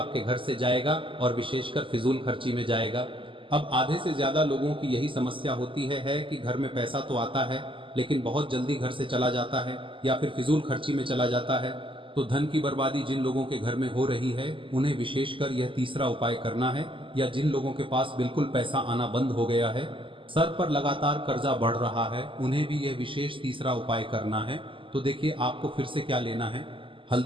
घर से जाएगा और विशेषकर फिजूल खर्ची में जाएगा। अब आधे से ज्यादा लोगों की यही समस्या होती है कि घर में पैसा तो आता है लेकिन बहुत जल्दी घर से चला जाता है या फिर फिजूल खर्ची में चला जाता है। तो धन की बर्बादी जिन लोगों के घर में हो रही है उन्हें विशेषकर यह तीसरा उपाय करना है, या जिन लोगों के पास बिल्कुल पैसा आना बंद हो गया है, सर पर लगातार कर्जा बढ़ रहा है, उन्हें भी यह विशेष तीसरा उपाय करना है। तो देखिए आपको फिर से क्या लेना है,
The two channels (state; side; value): late; left; 0.25 ms